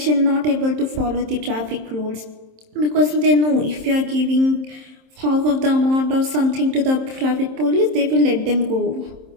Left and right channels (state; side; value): late; left; 27 ms